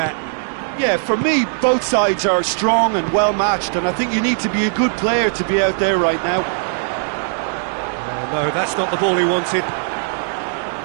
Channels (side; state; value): left; silent; digital silence